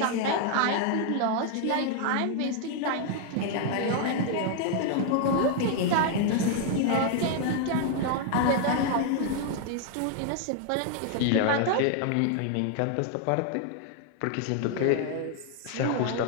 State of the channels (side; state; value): both; different; correlation 0.00